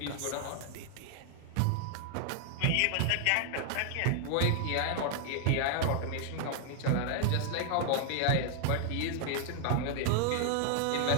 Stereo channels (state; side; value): different; both; correlation 0.00